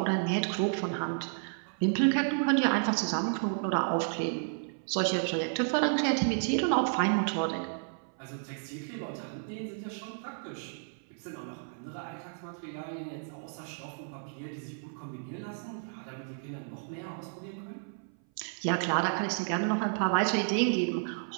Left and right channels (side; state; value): left; silent; 56 dB below the other